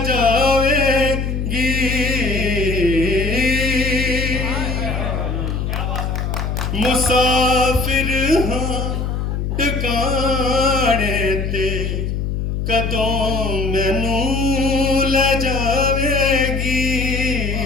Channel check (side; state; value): left; noise; hum, 2 dB below the sound